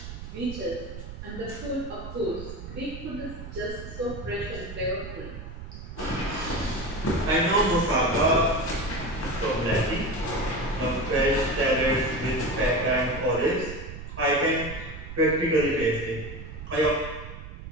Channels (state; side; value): noise; right; rumble, 11 dB below the sound